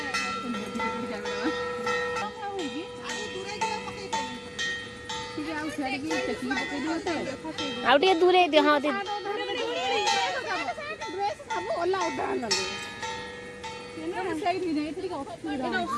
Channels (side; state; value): both; identical; correlation 1.00